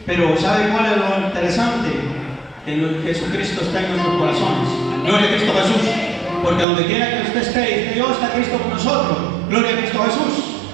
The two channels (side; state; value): left; drops out; at 6.7 s